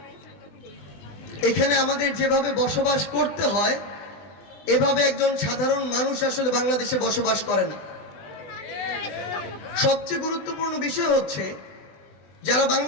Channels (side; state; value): right; late; 20 ms